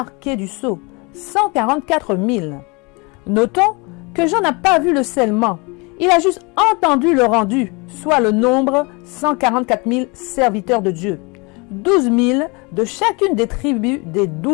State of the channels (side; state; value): right; quieter; 28.7 dB